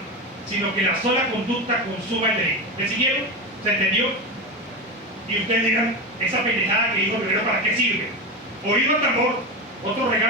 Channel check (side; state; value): both; normal; correlation 0.19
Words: sino que la sola conducta consuma el delito. ¿Me siguieron? ¿Se entendió? Y ustedes dirán: esa pendejada que dijo Rivero, ¿para qué sirve? Oído al tambor, otro